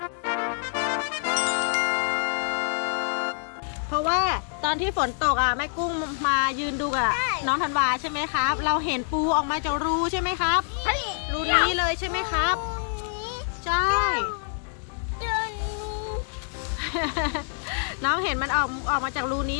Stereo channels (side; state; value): right; silent; 61 dB below the other